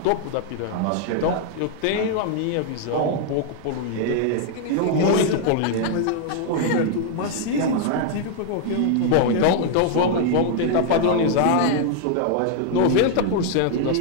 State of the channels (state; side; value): different; both; correlation 0.00